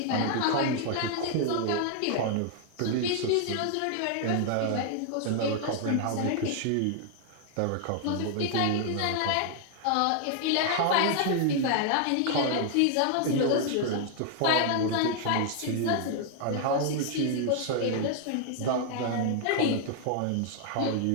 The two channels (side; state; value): both; different; correlation 0.00